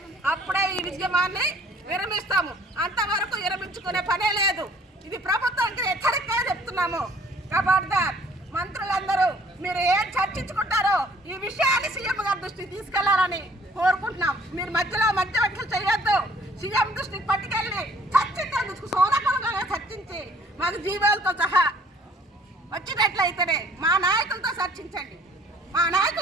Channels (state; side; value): normal; both; correlation 0.57